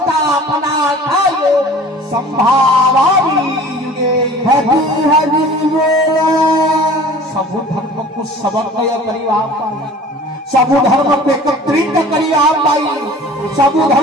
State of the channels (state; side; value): normal; both; correlation 0.44